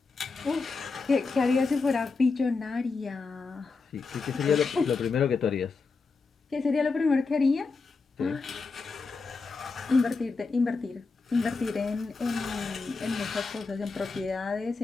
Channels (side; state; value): right; quieter; 4.3 dB